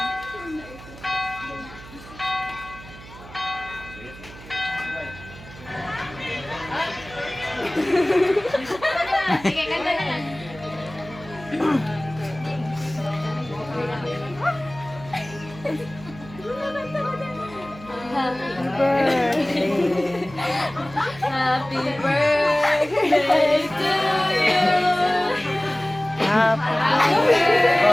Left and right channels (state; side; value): noise; right; hum, 18 dB below the sound